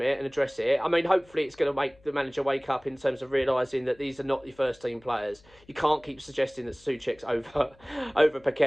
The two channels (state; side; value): noise; left; hum, 28 dB below the sound